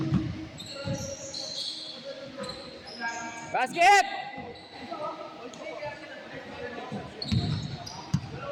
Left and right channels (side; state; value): both; identical; correlation 1.00